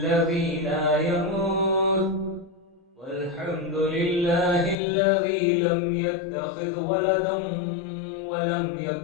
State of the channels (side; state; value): right; drops out; at 4.8 s